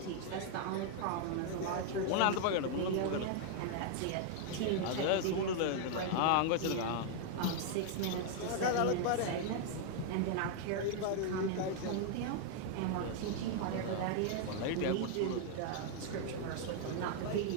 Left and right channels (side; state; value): both; different; correlation 0.00